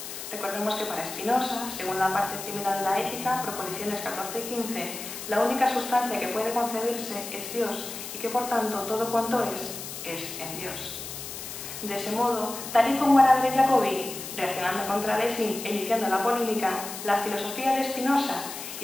Recordemos que para Spinoza, según la parte primera de la Ética, proposiciones 14 y 15, la única sustancia que puede concebirse es Dios y que por tanto todo cuanto es en Dios. De ese modo, tal y como Araber y Jacobi, reaccionando contra Lessing e iniciando la polémica, la filosofía de Spinoza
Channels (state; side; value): noise; left; hiss, 9 dB below the sound